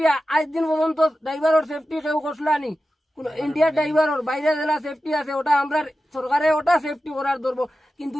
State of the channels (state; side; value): normal; both; correlation 0.93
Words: আজ দিন পর্যন্ত ড্রাইভারের সেফটি কেউ করলানি ইন্ডিয়ার ড্রাইভারের বাইরে জেলা সেফটি আছে ওটা আমরা সরকারে ওটা সেফটি করার ধরবো কিন্তু